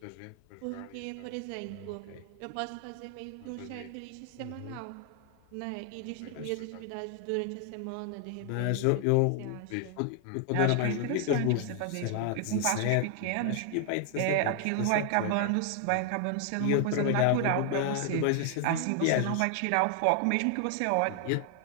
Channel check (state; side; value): different; both; correlation 0.00